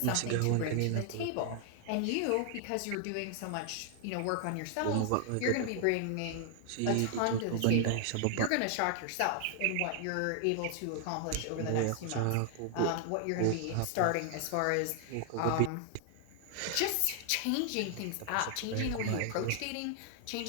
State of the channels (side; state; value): both; different; correlation 0.00